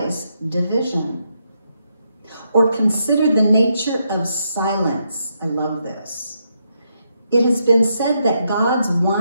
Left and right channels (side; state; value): both; inverted; correlation -0.80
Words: division. Or consider the nature of silence. I love this. It has been said that God's